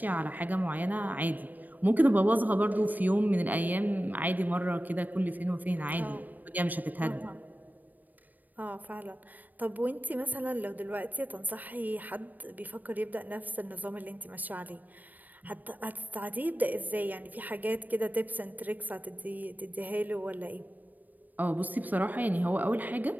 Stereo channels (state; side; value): late; left; 0.085 ms